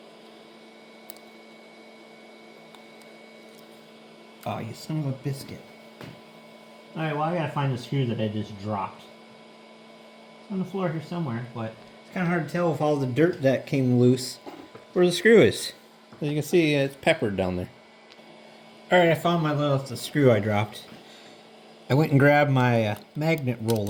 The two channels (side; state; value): both; identical; correlation 1.00